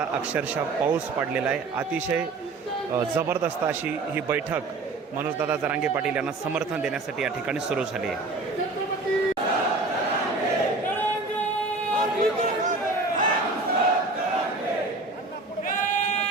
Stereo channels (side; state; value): left; quieter; 3.5 dB